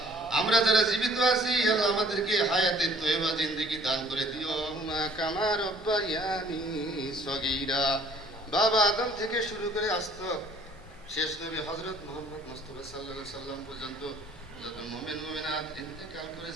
আমরা যারা জীবিত আছি আল্লাহ আমাদেরকে হায়াতের তয়্যিবা জিন্দেগি দান করে দিও। মা কামা রব্বায়ানি সগীরা, বাবা আদম থেকে শুরু করে আসতো শেষ নবী হযরত মুহাম্মদ মুস্তাফা সাল্লাল্লাহু আলাইহি সাল্লাম পর্যন্ত যত মুমিন মুমিনাত ইন্তেকাল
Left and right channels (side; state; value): both; normal; correlation 0.56